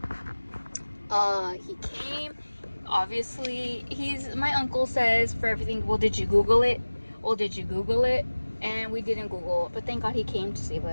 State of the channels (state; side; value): inverted; both; correlation -1.00